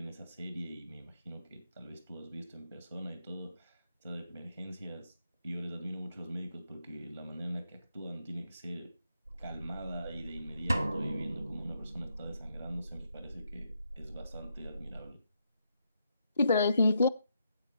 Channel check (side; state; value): both; inverted; correlation -0.79